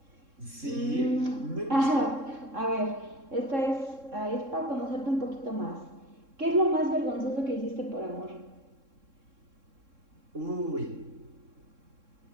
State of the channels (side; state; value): left; late; 3.7 ms